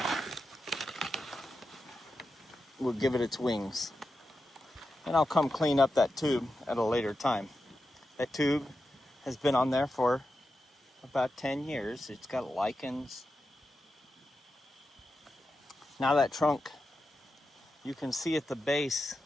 will give it its wings. And I'll come clean up that tube at a later time. That tube has been on there for about 10 years. It's got lichens. Now that trunk, you can see at the base,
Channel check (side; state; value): both; normal; correlation 0.90